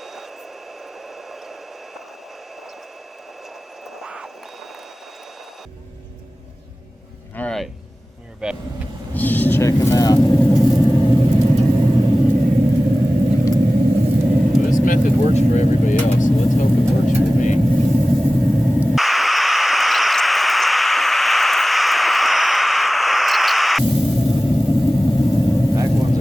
Alright, we're back. Just check them out. Well, this method works for everybody else, so let's hope it works for me. Back ones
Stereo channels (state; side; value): normal; both; correlation 0.97